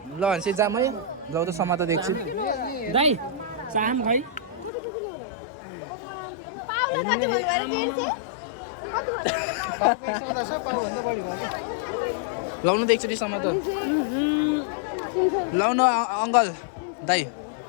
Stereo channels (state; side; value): drops out; right; at 4.7 s